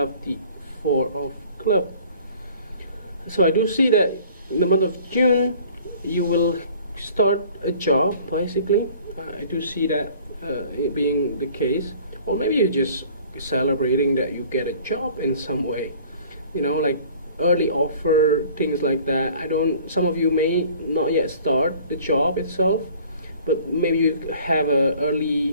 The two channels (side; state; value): both; inverted; correlation -0.51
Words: the Four of Clubs. So I do see that in the month of June you will start a job, basically. I do see that it being the case, or maybe you're just celebrating that you get a job in some way, you know, like early offer, things like that. Some of you may not yet start the job itself, but maybe you have a